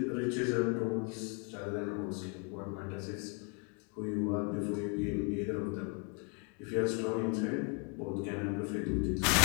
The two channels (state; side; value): quieter; right; 37.2 dB